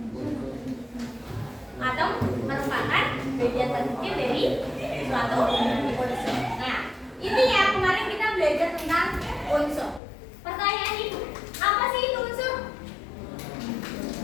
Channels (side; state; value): right; drops out; at 10.0 s